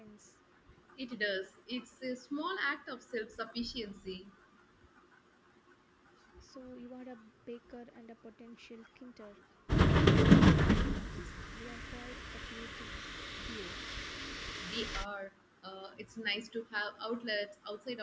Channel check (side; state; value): both; identical; correlation 1.00